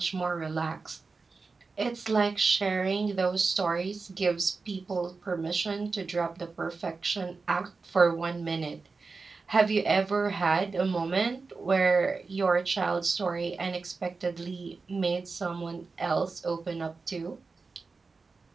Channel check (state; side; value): quieter; left; 4.3 dB